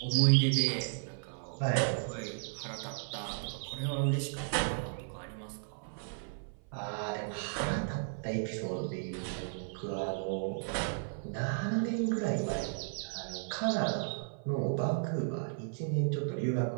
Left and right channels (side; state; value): left; silent; 55 dB below the other